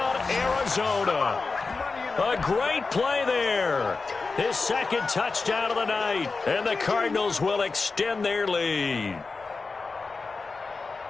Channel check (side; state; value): right; quieter; 4.2 dB